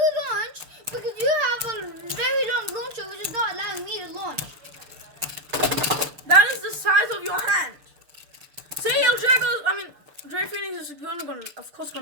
launch because you have a very long launcher which is not allowing me to launch. That is the size of your hand. Say El Drago's, Dread Phoenix is of course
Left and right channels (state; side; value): late; left; 6.8 ms